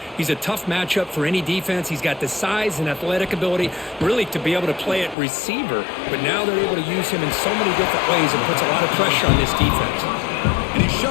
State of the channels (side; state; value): right; drops out; at 5.2 s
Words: He's a tough matchup for any defense. He's got the size and athletic ability really to be able to play at receiver. But now they're able to use him in so many different ways and puts a lot of pressure on this defense. And he's